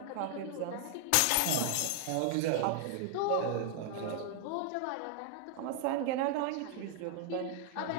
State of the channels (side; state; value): both; different; correlation 0.00